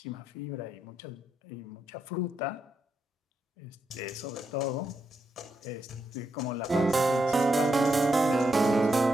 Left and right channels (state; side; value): normal; both; correlation 0.82